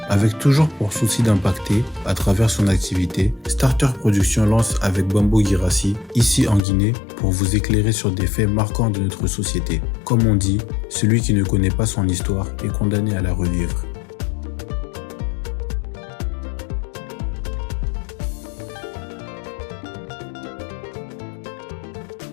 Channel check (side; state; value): right; drops out; at 6.7 s